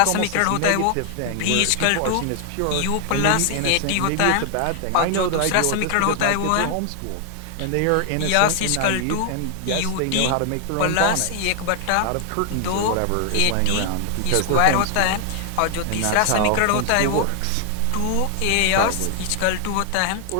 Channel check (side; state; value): both; different; correlation 0.00